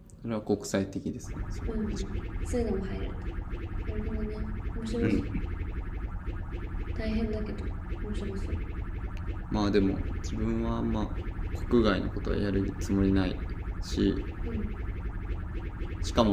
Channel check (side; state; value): both; identical; correlation 1.00